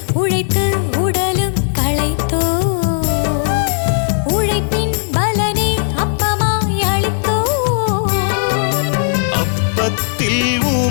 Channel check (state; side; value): silent; right; digital silence